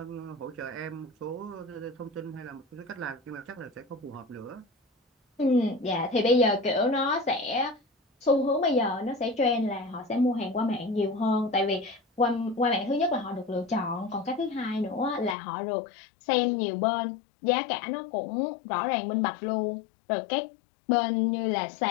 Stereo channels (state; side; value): drops out; right; at 15.4 s